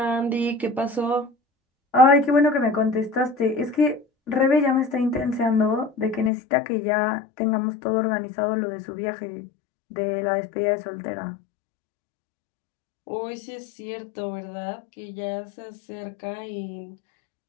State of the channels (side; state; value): right; drops out; at 6.3 s